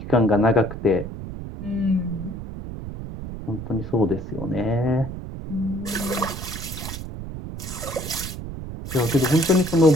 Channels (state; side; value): noise; right; rumble, 9 dB below the sound